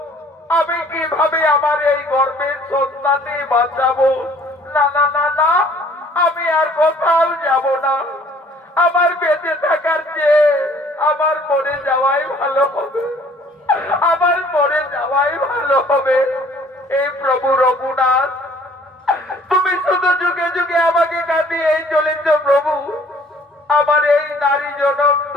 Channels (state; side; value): normal; both; correlation 0.56